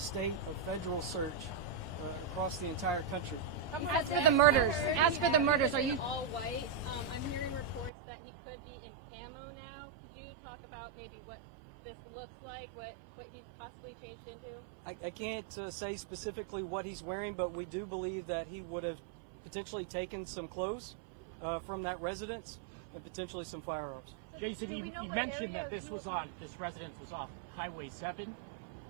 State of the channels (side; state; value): left; drops out; at 7.9 s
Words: a federal search across the entire country. As for the murders, are you? All white. I'm hearing reports that he could be in camo now. Could you talk about maybe what this looks like, what he's possibly changed into? I can't say specifically what he's wearing, but we do believe that he would have potentially taken some clothes from that residence and potentially some firearms. So Jason, you mentioned that this residence was off Highway 7.